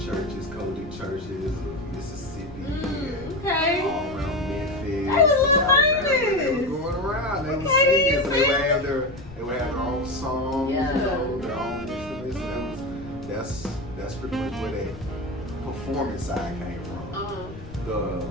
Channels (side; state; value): left; noise; rumble, 16 dB below the sound